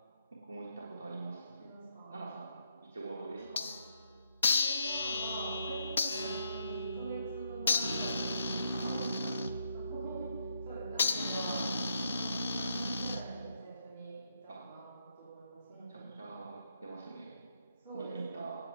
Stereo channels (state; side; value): inverted; both; correlation -0.76